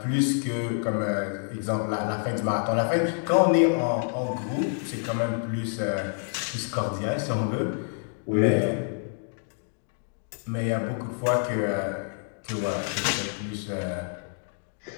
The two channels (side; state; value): right; silent; 60 dB below the other